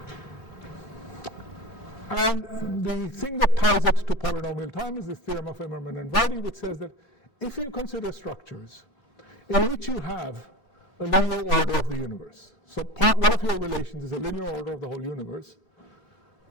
And the thing that ties it to polynomial time is this theorem of Immermann and Vardy, which says that if you consider structures in which you have a linear order of the universe, so one of your relations is a linear order of the whole universe,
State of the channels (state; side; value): late; right; 3.4 ms